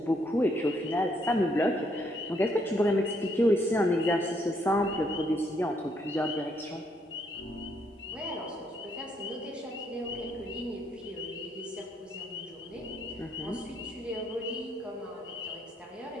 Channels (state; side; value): normal; both; correlation 0.72